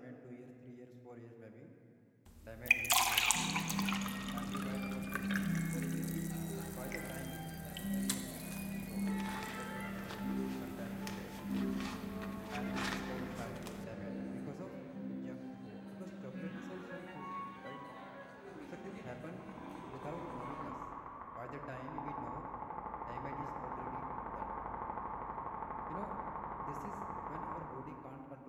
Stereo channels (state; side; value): identical; both; correlation 1.00